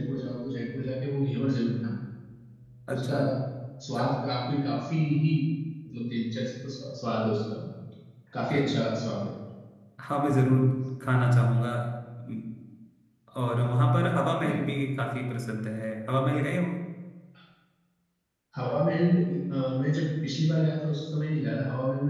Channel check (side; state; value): both; identical; correlation 1.00